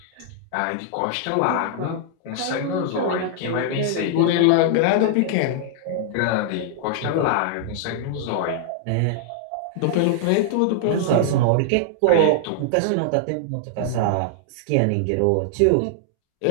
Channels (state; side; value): different; both; correlation -0.01